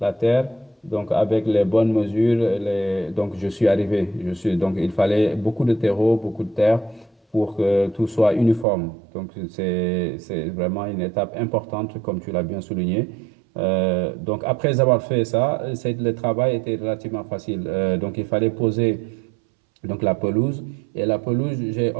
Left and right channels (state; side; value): drops out; left; at 8.7 s